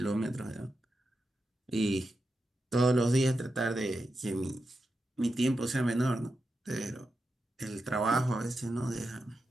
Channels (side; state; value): both; normal; correlation 0.88